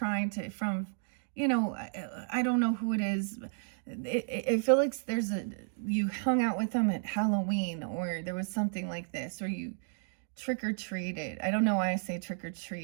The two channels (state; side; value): silent; left; digital silence